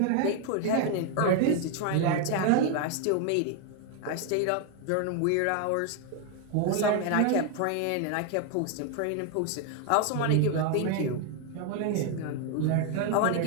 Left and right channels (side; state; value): both; different; correlation 0.01